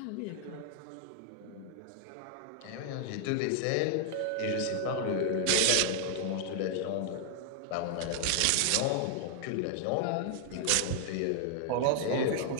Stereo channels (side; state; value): both; different; correlation 0.00